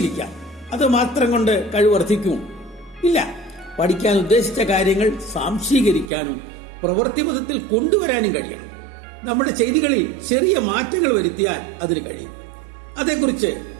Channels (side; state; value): left; drops out; at 6.1 s